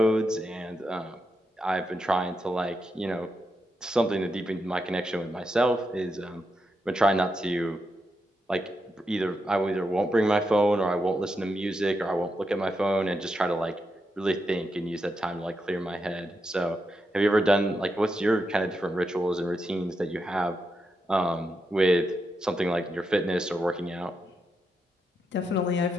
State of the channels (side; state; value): both; normal; correlation 0.85